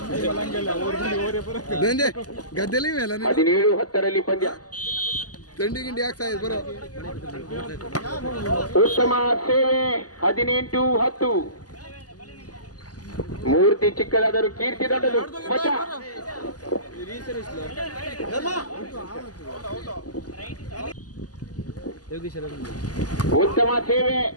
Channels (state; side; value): late; right; 0.68 ms